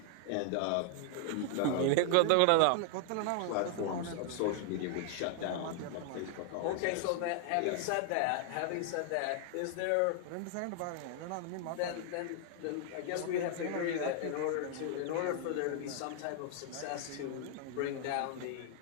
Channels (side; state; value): both; different; correlation 0.00